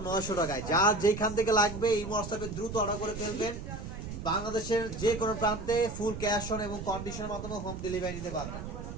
900 টাকায়। যার যেখান থেকে লাগবে এই হোয়াটসঅ্যাপে দ্রুত অর্ডার করে ফেলবেন। বাংলাদেশের যে কোনো প্রান্তে ফুল ক্যাশ অন এবং কন্ডিশনের মাধ্যমে হোম ডেলিভারি নিতে পারবেন।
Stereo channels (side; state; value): right; noise; rumble, 8 dB below the sound